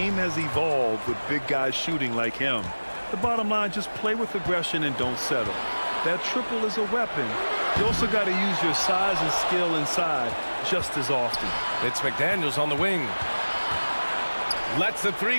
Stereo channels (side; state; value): both; inverted; correlation -1.00